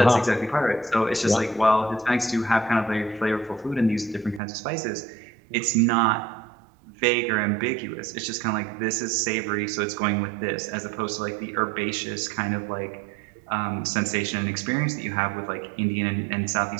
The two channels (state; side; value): drops out; left; at 4.4 s